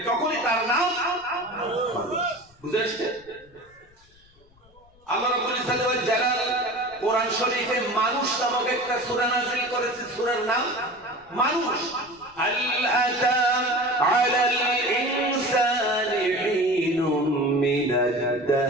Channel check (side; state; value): left; noise; rumble, 30 dB below the sound